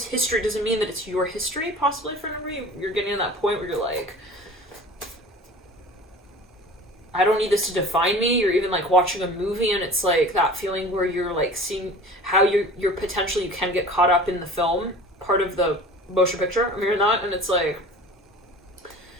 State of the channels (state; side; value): normal; both; correlation 0.41